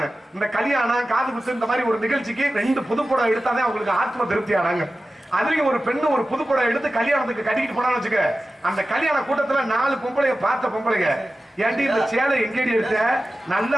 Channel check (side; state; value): both; normal; correlation 0.94